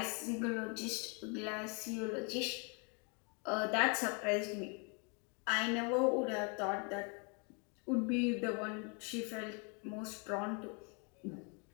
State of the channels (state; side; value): quieter; right; 34.9 dB